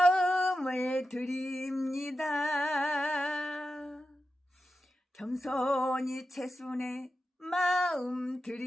드립니다. 겸손히 채순의 마음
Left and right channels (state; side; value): normal; both; correlation 0.91